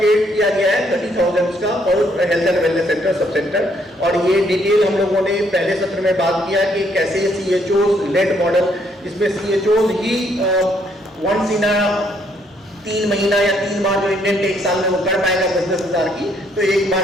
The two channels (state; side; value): normal; both; correlation 0.69